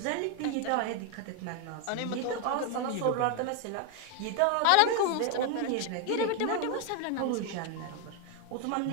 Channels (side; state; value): both; different; correlation 0.01